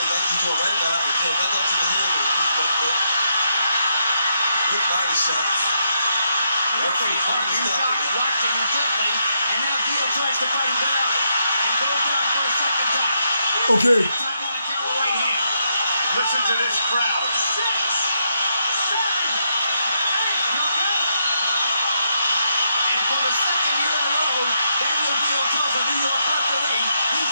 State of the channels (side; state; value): both; inverted; correlation -0.79